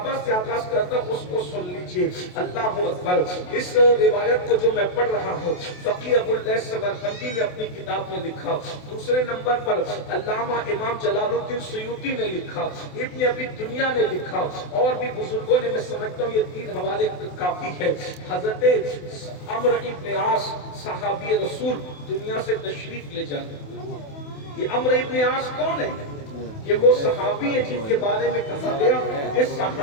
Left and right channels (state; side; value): late; right; 28 ms